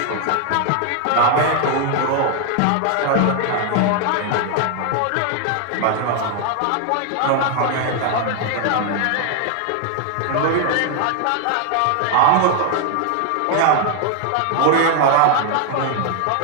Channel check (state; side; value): different; both; correlation 0.00